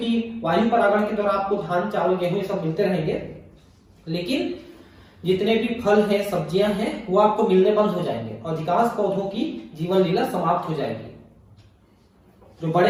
वायु परागण के द्वारा आपको धान, चावल, गेहूं ये सब मिलते रहेंगे, लेकिन जितने भी फल हैं, सब्जियां हैं, वो आपको मिलने बंद हो जाएंगे और अधिकांश पौधों की जीवन लीला समाप्त हो जाएगी। जो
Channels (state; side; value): identical; both; correlation 1.00